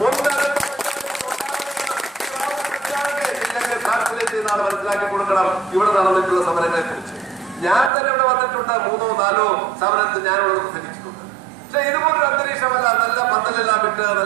മനസ്സിലാക്കി കൊടുക്കണം. ഇവിടെ നടന്നിട്ടുള്ള സമരങ്ങളെ കുറിച്ച് ഞാൻ തന്നെ ഇവിടെ വന്നിട്ടുണ്ട്, 3-4 സമരത്തിൽ ഞാൻ ഇവിടെ പ്രസംഗിച്ചിട്ടുണ്ട്. പക്ഷെ ഇതുപോലൊരു അന്തരീക്ഷമല്ല. നല്ല പന്തലെല്ലാം വിട്ട്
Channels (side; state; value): left; drops out; at 7.9 s